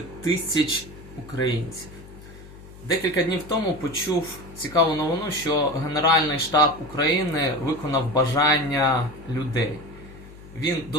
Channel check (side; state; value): left; noise; hum, 18 dB below the sound